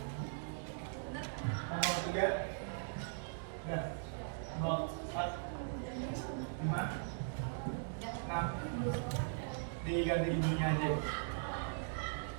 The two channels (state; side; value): silent; left; digital silence